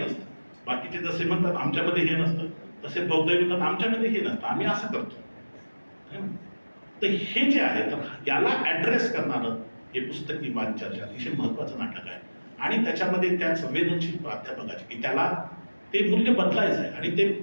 बाकीचे जसे म्हणतात आमच्यामध्ये हे नसतं, तसे बौद्ध म्हणतात आमच्यामध्ये हे नसतं, आम्ही असं करतो. तर हे जे आहे, तर याला ऍड्रेस करणारं हे पुस्तकी वाद चर्चा अतिशय महत्वाचं नाटक आहे. आणि त्याच्यामध्ये त्या संवेदनशील प्राध्यापकाचे की त्याला ते मूल्य बदलायचं आहे. आणि ते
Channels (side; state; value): both; inverted; correlation -1.00